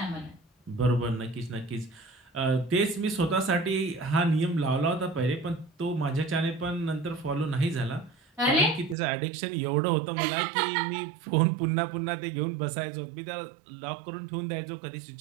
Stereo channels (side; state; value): left; drops out; at 9.0 s